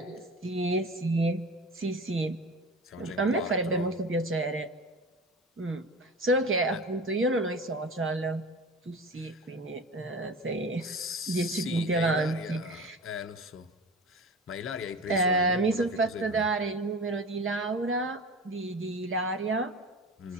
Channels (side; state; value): both; normal; correlation 0.33